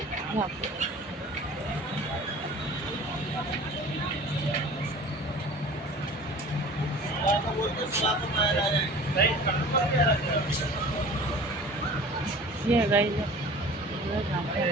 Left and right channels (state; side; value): normal; both; correlation 0.43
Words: यहाँ पे ये है गाइस, जहाँ पे